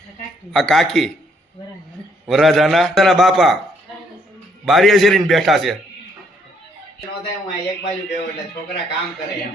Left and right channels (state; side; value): normal; both; correlation 0.69